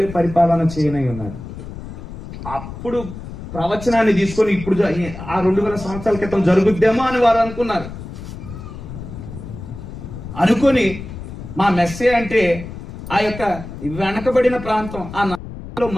పరిపాలన చేయనై ఉన్నాడు. అప్పుడు ప్రవచనాన్ని తీసుకొని ఇప్పుడు ఆ 2000 సంవత్సరాల క్రితం జరుగుద్దేమో అని వారు అనుకున్నారు. అనుకొని మా మెస్సే అంటే ఆ యొక్క వెనకబడిన ప్రాంతం, ఆ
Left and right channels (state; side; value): noise; left; rumble, 11 dB below the sound